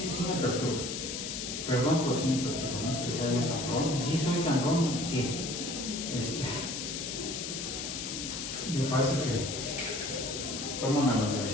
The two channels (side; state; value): left; noise; hiss, 5 dB below the sound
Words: me perturba. Perdón, pero sí me perturba. No es que sea yo sangrón. Y sí soy sangrón, ¿qué? Me parece que toman a la